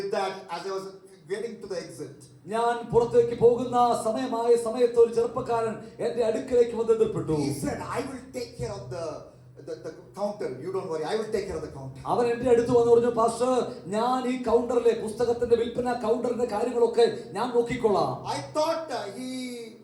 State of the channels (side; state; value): both; identical; correlation 1.00